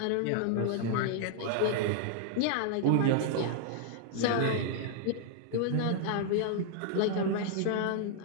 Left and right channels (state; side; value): different; both; correlation -0.01